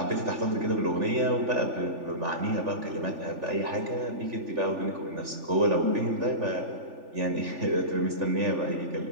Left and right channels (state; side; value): late; left; 3.4 ms